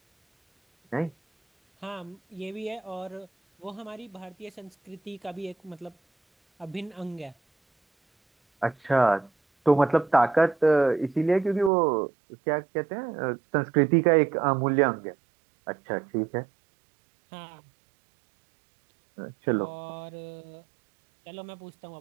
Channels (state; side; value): drops out; left; at 11.7 s